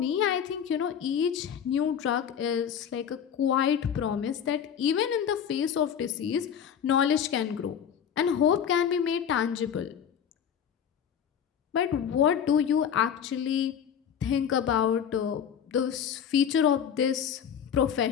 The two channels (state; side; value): quieter; right; 8.3 dB